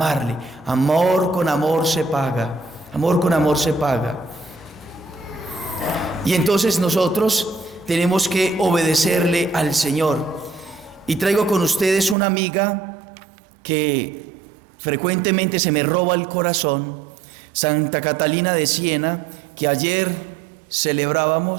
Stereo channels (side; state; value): left; drops out; at 12.2 s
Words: Amor con amor se paga. Amor con amor se paga. Y entonces nosotros tenemos que obedecerle al Señor. Y traigo con ustedes una amiga que frecuentemente se me roba el corazón, Santa Catalina de Siena, que ayer